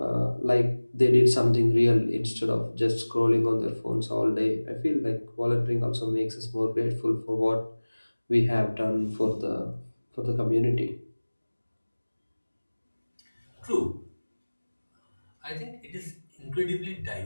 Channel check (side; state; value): both; inverted; correlation -1.00